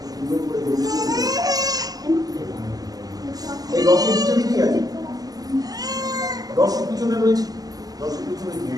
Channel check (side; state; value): left; late; 0.18 ms